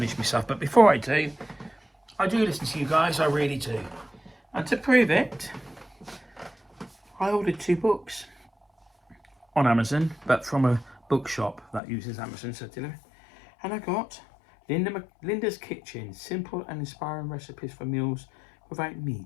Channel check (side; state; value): right; drops out; at 11.8 s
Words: myself, but before I do listen to you guys. I really do. And to prove it, I ordered 2 books on Amazon, but from a bookshop that uses Amazon to deliver. And I got Linda's Kitchen, simple and inspiring recipes for meals without